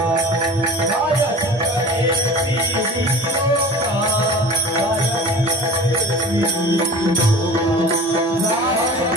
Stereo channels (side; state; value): both; normal; correlation 0.39